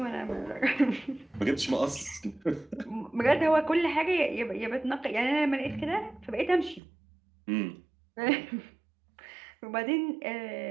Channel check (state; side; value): drops out; left; at 6.8 s